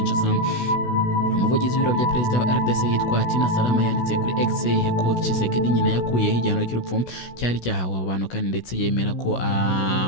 umuvugizi w'ibiro bya perezida wa RDC yitwa Tina Salama yanditse kuri X ko Tshisekedi nyine yakuyeho igihano cy'urupfu cyari cyahawe abantu kandi ndetse yemera ko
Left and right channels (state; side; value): late; right; 16 ms